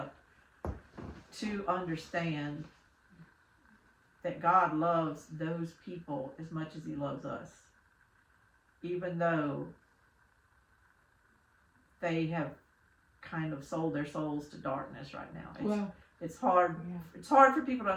to understand that God loves those people as much as he loves us, even though they have kind of sold their souls to darkness right now. It's hard. Yeah. It's hard for people to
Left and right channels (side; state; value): both; identical; correlation 1.00